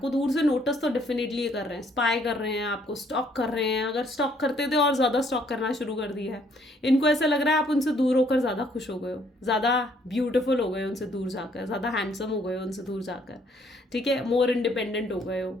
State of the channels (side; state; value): both; normal; correlation 0.65